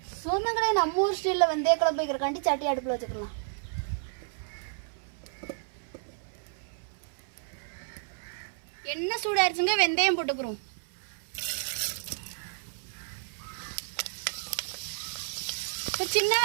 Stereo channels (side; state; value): left; silent; 57 dB below the other